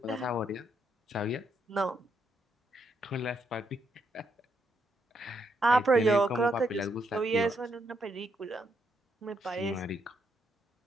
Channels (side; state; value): both; normal; correlation 0.77